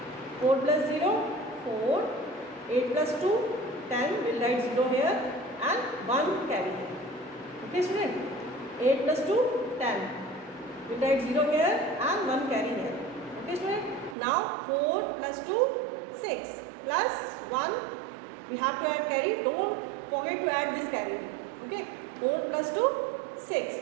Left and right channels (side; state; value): left; drops out; at 14.2 s